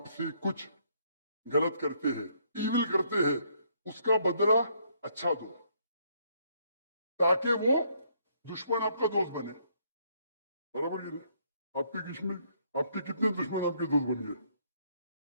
कुछ गलत करते हैं, ईविल करते हैं, उसका बदला अच्छा दो ताकि वो दुश्मन आपका दोस्त बने। बराबर ये आपके कितने दुश्मन आपके दोस्त बन गए?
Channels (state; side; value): inverted; both; correlation -0.69